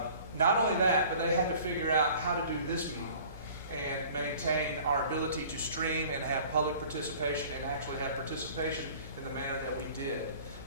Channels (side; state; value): both; inverted; correlation -0.48